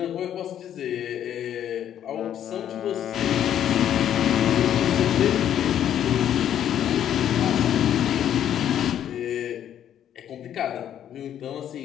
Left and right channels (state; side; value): quieter; right; 10.3 dB